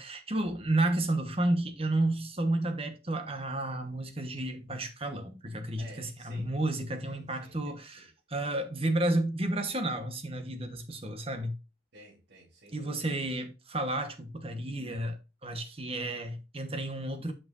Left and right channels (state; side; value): normal; both; correlation 0.71